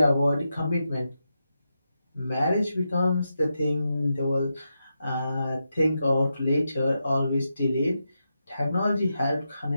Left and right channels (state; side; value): inverted; both; correlation -0.87